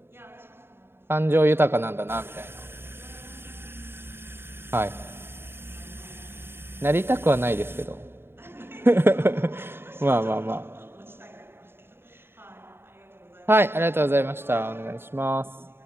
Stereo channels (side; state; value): left; late; 0.11 ms